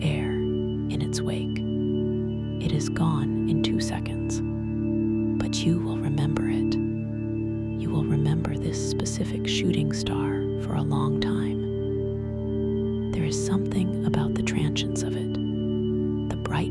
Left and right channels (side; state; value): both; identical; correlation 1.00